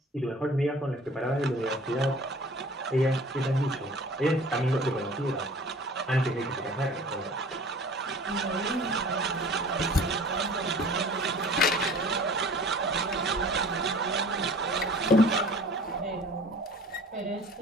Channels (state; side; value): normal; both; correlation 0.46